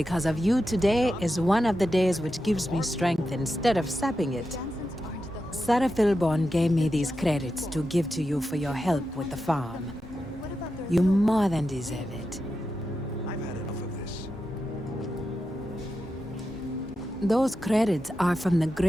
of you, today is one of the days which gives me strength instead of sapping it. Sarah Philborn gave me these credits to give to you for your help with the farm. You more than deserve it. I've had enough of this. Those credits are from the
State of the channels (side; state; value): both; normal; correlation 0.89